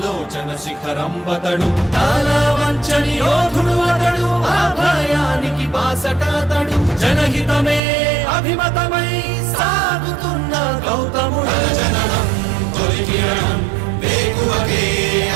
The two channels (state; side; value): drops out; left; at 7.8 s